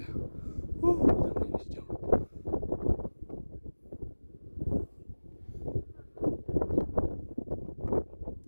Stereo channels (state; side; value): inverted; both; correlation -1.00